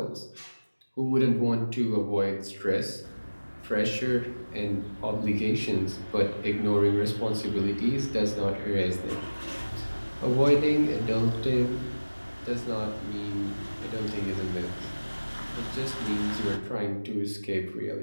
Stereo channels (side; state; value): both; inverted; correlation -1.00